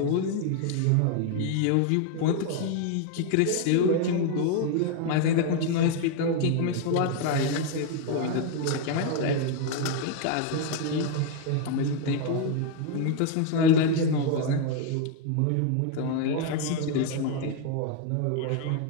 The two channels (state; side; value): different; both; correlation 0.01